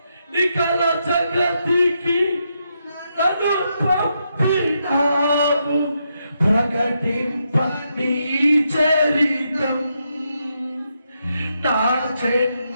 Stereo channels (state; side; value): inverted; both; correlation -0.81